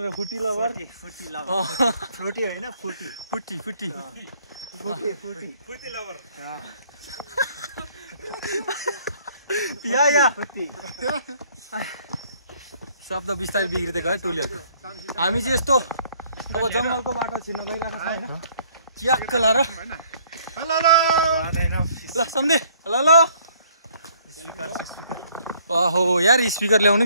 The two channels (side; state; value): both; inverted; correlation -0.62